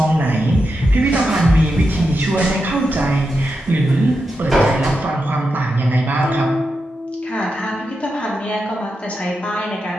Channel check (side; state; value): both; normal; correlation 0.87